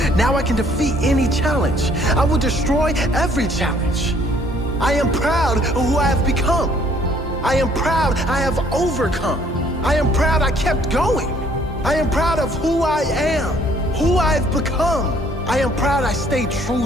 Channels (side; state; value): both; normal; correlation 0.61